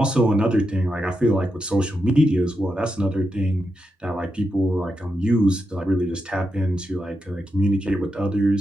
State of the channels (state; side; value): normal; both; correlation 0.86